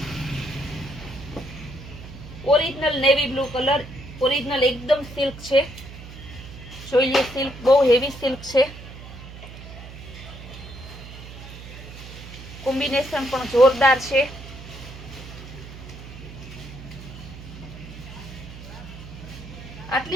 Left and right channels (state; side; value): noise; right; hum, 14 dB below the sound